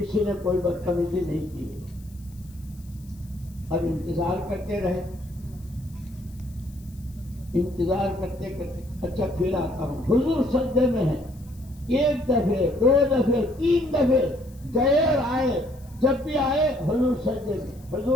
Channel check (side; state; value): left; noise; hiss, 27 dB below the sound